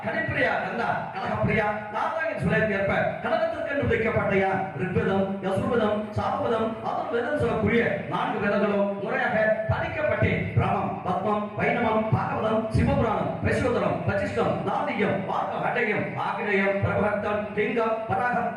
கனிப்பிரியா கந்தா கலகப்பிரியா நாராயண சுலைக்கு ஏற்ப கலகத்திற்கு வைக்கப்பட்ட ரிக்வேதம் யசுர்வேதம் சாமவேதம் அதன் வேதம் சொல்லக்கூடிய 4 வேதங்களும் முறையாக படிக்கப்பட்டு பிரமம் பத்மம் வைணவம் பாகவதம் சிவபுராணம் வைஸ்வதரம் வசிஷ்டம் நாதியம் வாக்க ஹடயம் ஆகிரயம் பிரபகத்தம் லிங்கம் பராகம்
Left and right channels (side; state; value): both; identical; correlation 1.00